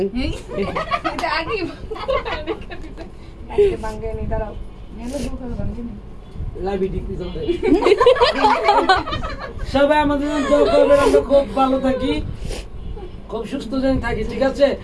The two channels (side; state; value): both; identical; correlation 1.00